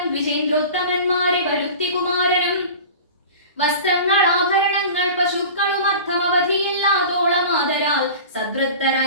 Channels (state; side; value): inverted; both; correlation -0.36